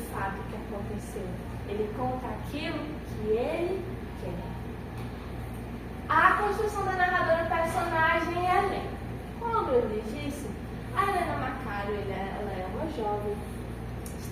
fato que aconteceu. Ele conta aquilo que ele quer. A construção da narradora personagem é Helena. Como eu lhes disse, a Helena Macário ela é uma jovem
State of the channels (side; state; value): both; identical; correlation 1.00